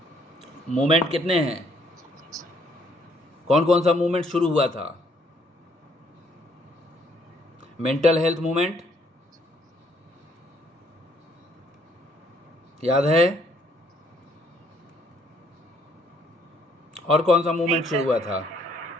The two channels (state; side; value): normal; both; correlation 0.67